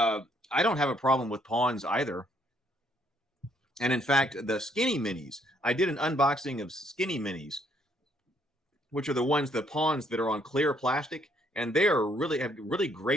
don't have a problem with pawns either. And in fact, the skinny minis, I did an unboxing of skinny minis, which are the pawns that are on clear plastic, and they are have really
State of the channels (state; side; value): normal; both; correlation 0.68